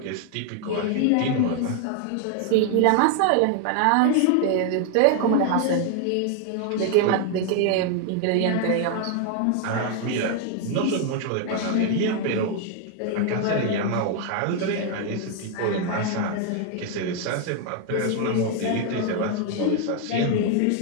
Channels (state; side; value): different; both; correlation 0.00